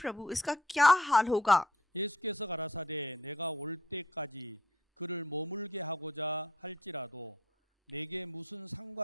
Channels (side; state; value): both; normal; correlation 0.62